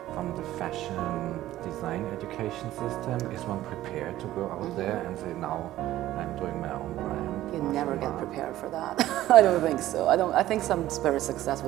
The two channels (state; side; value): quieter; left; 14.5 dB